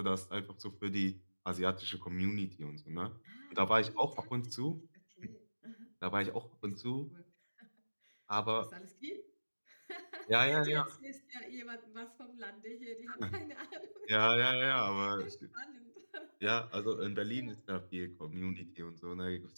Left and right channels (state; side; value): inverted; both; correlation -1.00